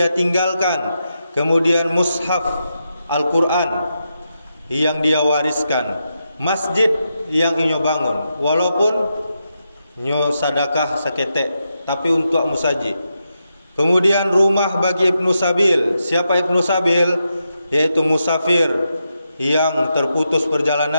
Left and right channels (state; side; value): inverted; both; correlation -0.86